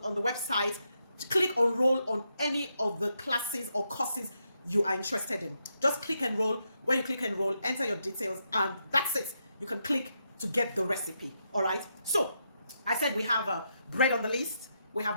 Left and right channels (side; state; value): both; inverted; correlation -0.82